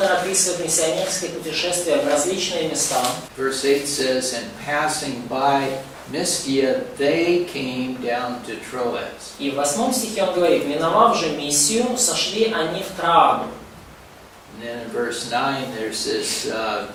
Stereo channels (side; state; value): both; identical; correlation 1.00